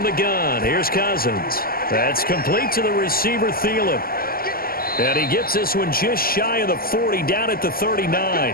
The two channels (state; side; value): late; right; 0.43 ms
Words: the gun, here's Cousins. That's complete to the receiver, Thielen. And he gets this one just shy of the 40, down at the